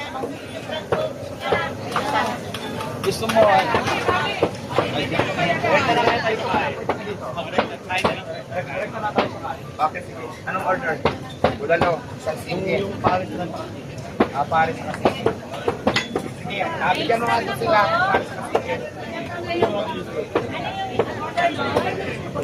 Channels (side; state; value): both; identical; correlation 1.00